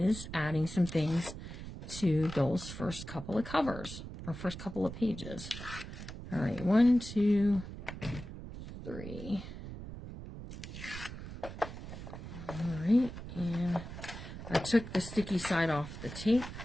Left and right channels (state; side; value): noise; right; rumble, 10 dB below the sound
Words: adding some things to those first couple of covers or first couple of pages. All right, 1, 2, 3. All right, and I took the sticky side off the tape.